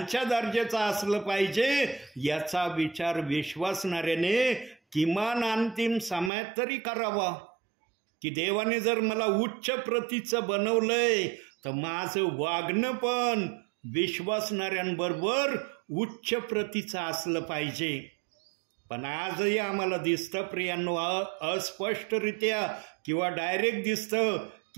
दर्जाचं असलं पाहिजे याचा विचार विश्वासणाऱ्याने किमान अंतिम समयात तरी करावा. की देवाने जर मला उच्च प्रतीचं बनवलंय तर माझं वागणं पण विश्वासणाऱ्यांबरोबर उच्च प्रतीचं असलं पाहिजे. पण आजही आम्हाला दिसतं प्रियांनो, अस्पष्टरित्या किंवा डायरेक्ट दिसतं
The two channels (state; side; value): drops out; left; at 6.3 s